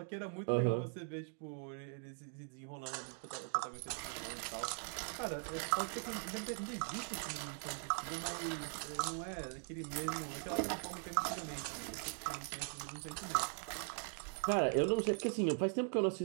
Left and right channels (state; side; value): silent; left; 50 dB below the other